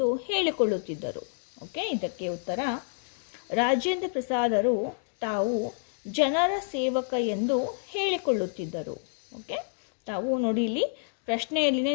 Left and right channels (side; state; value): right; silent; digital silence